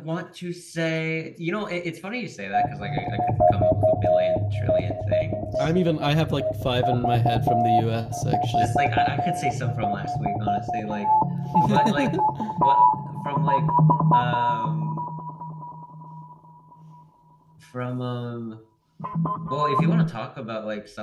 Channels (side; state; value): both; identical; correlation 1.00